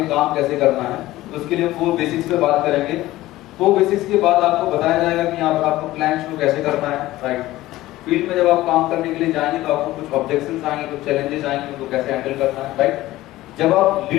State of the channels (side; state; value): right; quieter; 16.6 dB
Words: काम कैसे करना है, तो उसके लिए 4 बेसिक्स पे बात करेंगे. 4 बेसिक्स के बाद आपको बताया जाएगा कि यहाँ पर आपको प्लान शुरू कैसे करना है. राइट. फील्ड में जब आप काम करने के लिए जाएंगे तो आपको कुछ ऑब्जेक्शंस आएंगे, कुछ चैलेंजेस आएंगे, उनको कैसे हैंडल करना है. राइट. जब आप